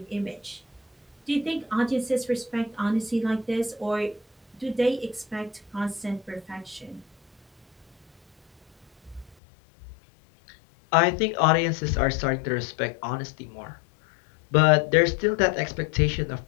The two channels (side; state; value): right; drops out; at 9.3 s